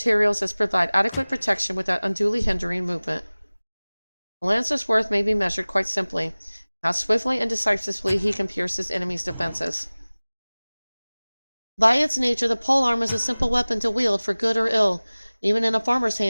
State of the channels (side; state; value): both; inverted; correlation -1.00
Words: as provide adequate protection without unduly hindering movement. A lancer's worth may be measured quite simply, how swiftly and decisively he can pierce his enemy's defenses. By its nature, the polearm is a simple weapon to wield for good or ill. Even in a farmer's